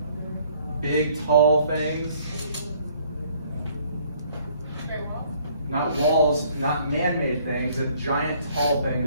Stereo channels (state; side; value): inverted; both; correlation -0.61